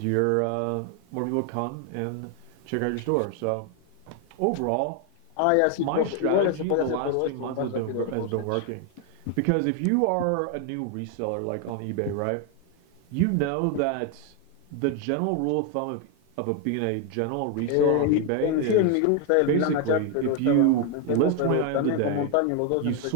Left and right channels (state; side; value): different; both; correlation 0.01